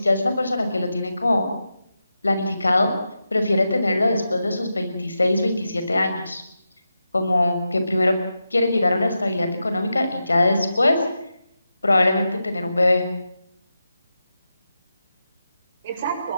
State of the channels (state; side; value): inverted; both; correlation -0.89